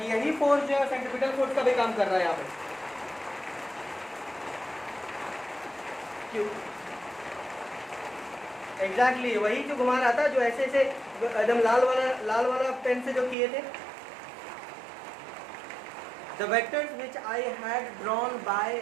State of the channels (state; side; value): drops out; left; at 13.4 s